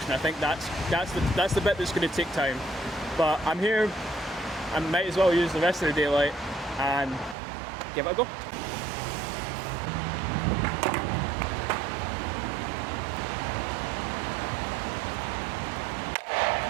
I think that's the bit that's going to take time. But I'm here, I might as well use the rest of the daylight and give it a go.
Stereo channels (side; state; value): left; drops out; at 7.4 s